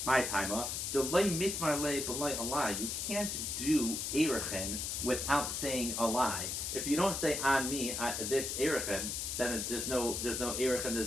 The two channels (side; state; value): left; noise; hiss, 2 dB below the sound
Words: My timer. The Loi Mitmar Le Beloi Alai. You can't do Erechin without saying a lie. If you don't say on me this erechin, then there's no erechin,